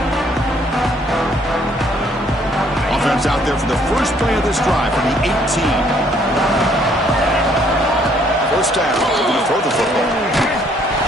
Offense out there for the first play of this drive from the 18. First down. They're going to throw the football.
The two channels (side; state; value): both; normal; correlation 0.64